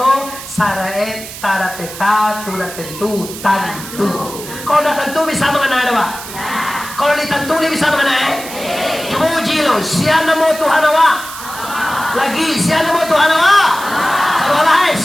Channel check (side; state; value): right; noise; hiss, 12 dB below the sound